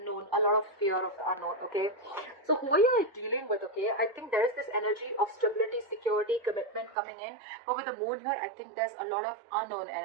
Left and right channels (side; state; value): left; drops out; at 7.0 s